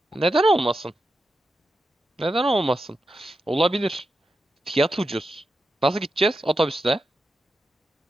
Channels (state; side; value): normal; both; correlation 0.89